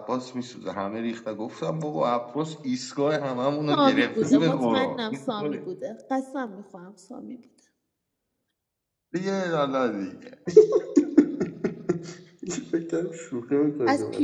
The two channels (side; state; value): both; identical; correlation 1.00